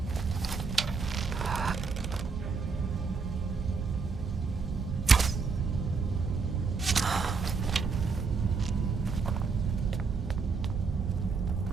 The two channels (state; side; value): quieter; left; 4.9 dB